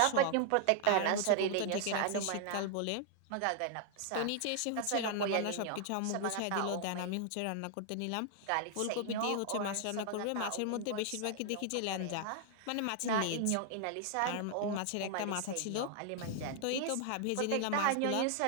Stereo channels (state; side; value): different; both; correlation 0.00